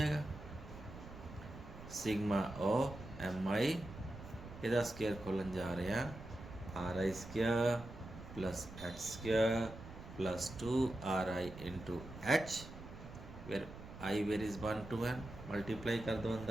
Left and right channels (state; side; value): noise; right; rumble, 14 dB below the sound